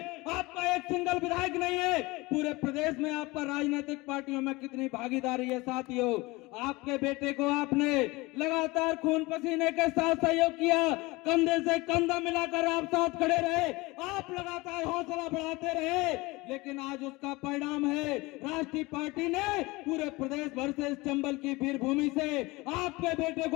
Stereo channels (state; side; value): quieter; right; 22.6 dB